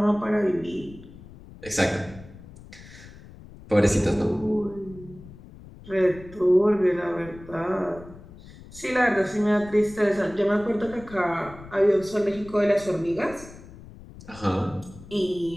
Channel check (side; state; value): left; noise; rumble, 18 dB below the sound